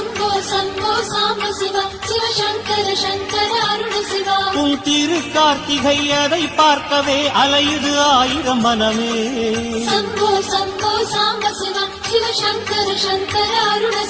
சம்போ சாம்ப சிவா சிவ சங்கர சங்கர அருண சிவா. உன் திரு கார்த்திகை அதை பார்க்கவே அலையுது ஆயிரம் மனமே. சம்போ சம்போ சாம்ப சிவா சிவ சங்கர சங்கர அருண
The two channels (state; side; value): identical; both; correlation 1.00